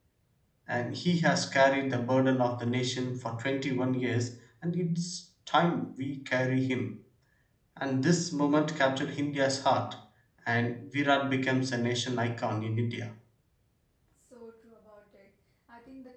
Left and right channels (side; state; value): both; identical; correlation 1.00